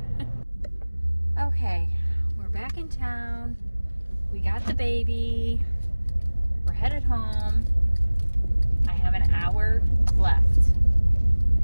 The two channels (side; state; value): both; inverted; correlation -1.00